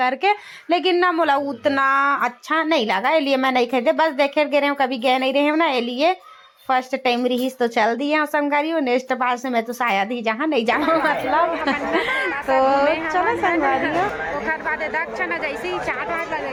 लेकिन ना मोला उतना अच्छा नहीं लगा, इसलिए मैं नहीं खरीदे, बस देखे गए रहे कभी गए नहीं रहे हूँ ना, इसलिए फर्स्ट टाइम रही तो चल दी है संगवारी हो। नेक्स्ट बार से मैं तो शायद ही जहाँ नहीं जाऊँ मतलब तो चलो संगवारी हो। ओखर बाद दक्ष ना जैसे ही चाट वाट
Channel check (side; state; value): both; identical; correlation 1.00